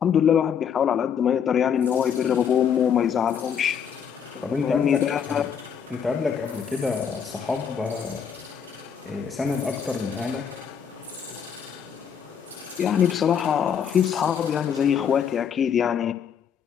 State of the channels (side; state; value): right; quieter; 7.7 dB